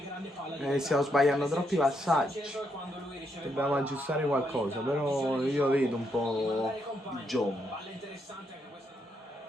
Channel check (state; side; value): normal; both; correlation 0.78